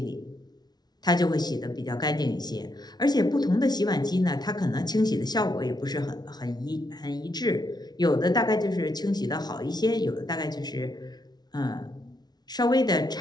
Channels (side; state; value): right; late; 0.19 ms